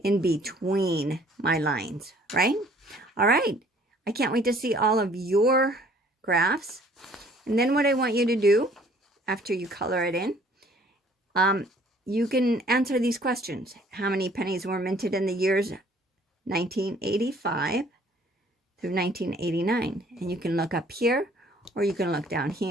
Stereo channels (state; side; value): normal; both; correlation 0.57